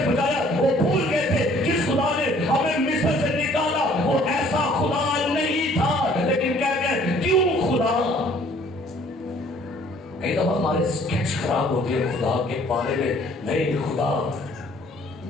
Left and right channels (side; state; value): both; normal; correlation 0.58